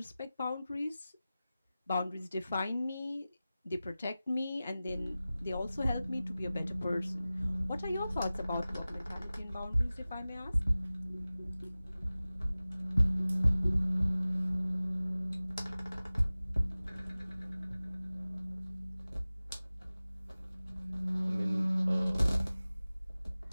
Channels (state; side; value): inverted; both; correlation -0.97